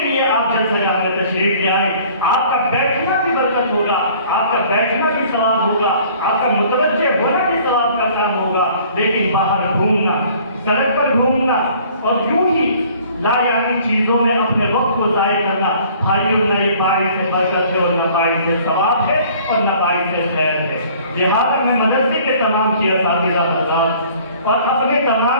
لیے آپ جلسہ جہاں میں تشریف لے آئیں۔ آپ کا بیٹھنا بھی برکت ہوگا، آپ کا بیٹھنا بھی ثواب ہوگا، آپ کا متوجہ ہونا بھی ثواب کا کام ہوگا۔ لیکن باہر گھومنا، سڑک پر گھومنا اور یوں ہی لا یعنی چیزوں میں اپنے وقت کو ضائع کرنا، بھائیوں، نہ یہ باعث سے برکت ہے اور نہ باعث سے ثواب ہے اور نہ باعث سے خیر ہے۔ لہٰذا میں مدرسے کے تمام کی اساتذہ حضرات اور اپنے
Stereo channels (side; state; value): both; inverted; correlation -0.53